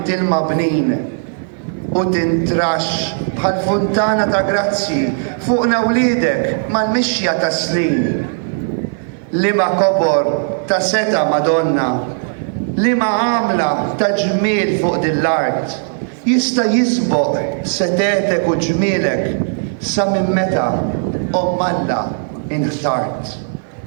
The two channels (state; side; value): silent; left; 56 dB below the other